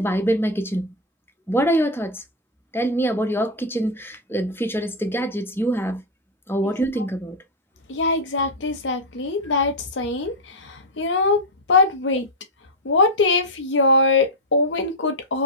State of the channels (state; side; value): normal; both; correlation 0.02